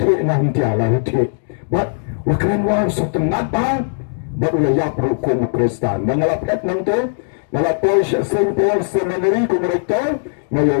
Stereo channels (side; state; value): right; silent; digital silence